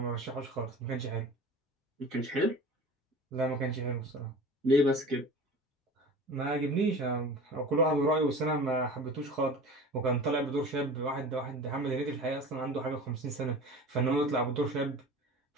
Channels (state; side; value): normal; both; correlation 0.37